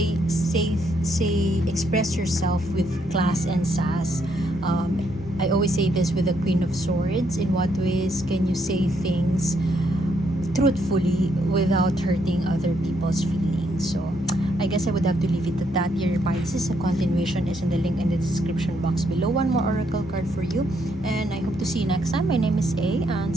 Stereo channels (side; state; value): both; normal; correlation 0.74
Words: express yourself with class and sass. I always say this with the Queen of Swords. In what ways can you say things truthfully without hurting other people's feelings? So I guess I would have to leave it at that, dear Pisces. A continuation is in the link in the description box below. One more oracle card for you, and I hope to see you next time. My name is A, and